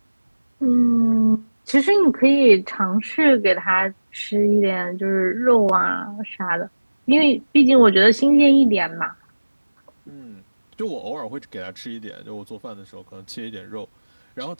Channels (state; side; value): inverted; both; correlation -1.00